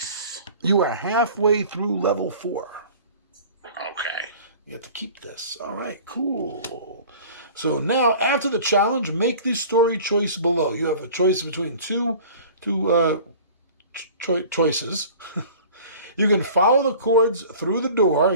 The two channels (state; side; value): inverted; both; correlation -0.44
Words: You are halfway through level 4. Okay. You have to keep this. All right, cool. So now, after the challenge, make the story choice below. You have a choice between two choices. You can follow the cords through the door. I